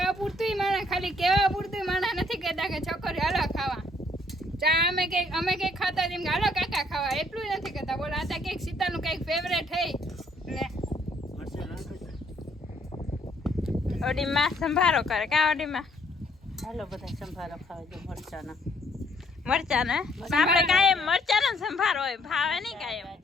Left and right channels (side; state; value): both; normal; correlation 0.66